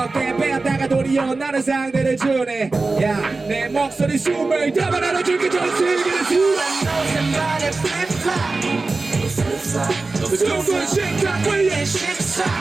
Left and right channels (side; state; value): left; quieter; 3.6 dB